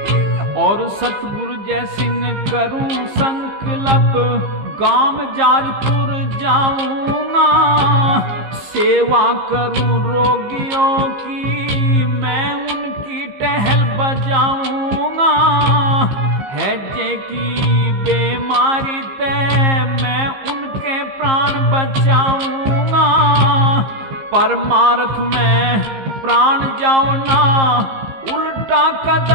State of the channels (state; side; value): late; left; 15 ms